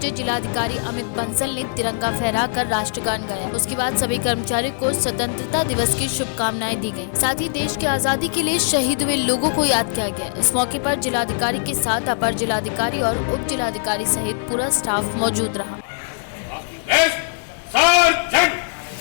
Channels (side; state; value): right; silent; 63 dB below the other